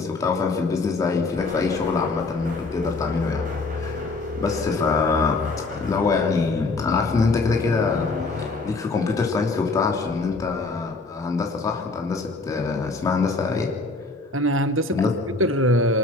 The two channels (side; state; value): right; quieter; 3.5 dB